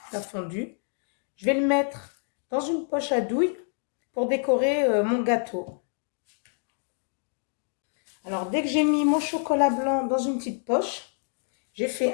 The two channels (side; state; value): right; silent; 60 dB below the other